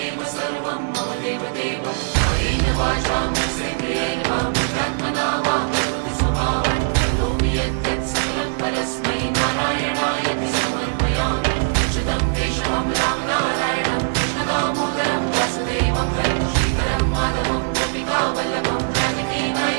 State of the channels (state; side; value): silent; left; digital silence